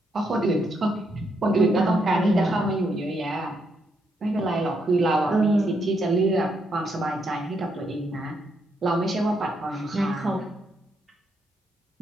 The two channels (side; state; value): both; normal; correlation 0.78